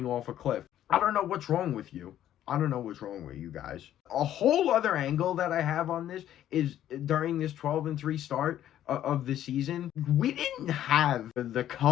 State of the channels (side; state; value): right; quieter; 11.7 dB